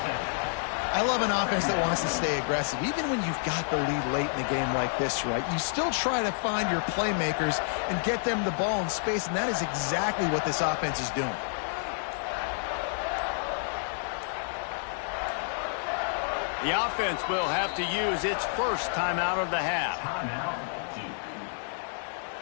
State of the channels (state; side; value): silent; right; 58 dB below the other